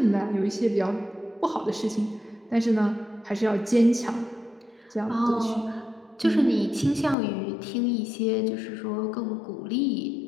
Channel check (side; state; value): right; drops out; at 7.2 s